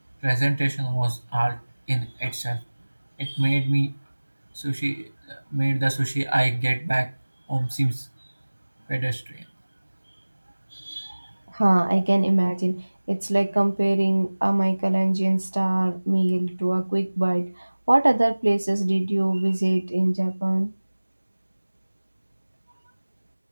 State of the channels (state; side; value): inverted; both; correlation -1.00